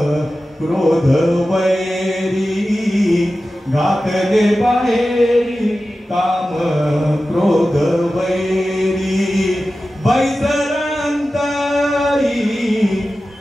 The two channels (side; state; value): both; normal; correlation 0.94